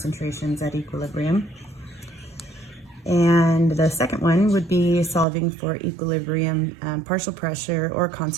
at equilibrium. And the second one would be solving for equilibrium, partial pressure, or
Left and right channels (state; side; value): drops out; left; at 5.2 s